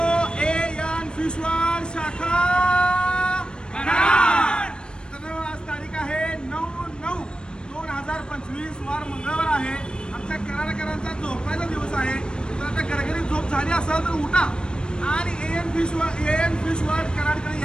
एन फिश वर्ल्ड शाखा कराड. तर आज तारीख आहे 9/9/2025 वार मंगळवार आहे. आमच्या कराडकरांचा झोपायचा दिवस आहे. तर आता घरघरी झोप झाली असेल तर उठा आणि एन फिश वर्ल्ड कराडकडे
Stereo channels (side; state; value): right; late; 0.052 ms